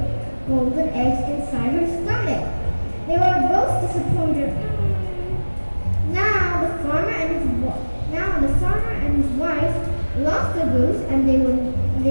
golden eggs inside her stomach. They were both disappointed. Now the farmer and his wife lost the goose and they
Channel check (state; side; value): inverted; both; correlation -1.00